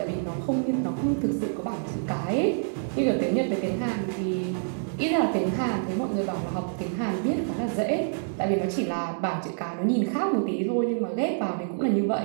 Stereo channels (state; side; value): silent; left; digital silence